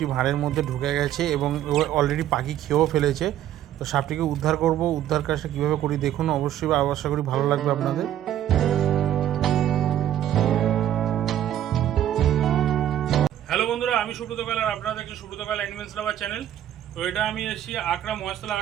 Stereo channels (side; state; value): left; quieter; 11.6 dB